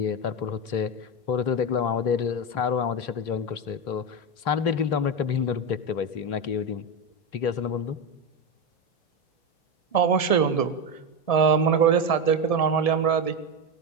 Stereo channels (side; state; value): right; late; 1.7 ms